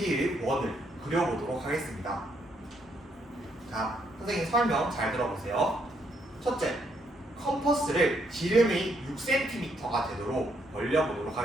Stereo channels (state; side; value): normal; both; correlation 0.73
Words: 원을 그려보도록 하겠습니다. 자, 선생님 설명 잘 들어보세요. 첫째, 컴퍼스를 지름이 6cm가 되도록 벌려보도록